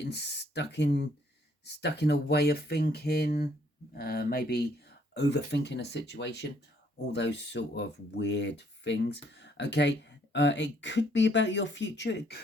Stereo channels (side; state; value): both; normal; correlation 0.66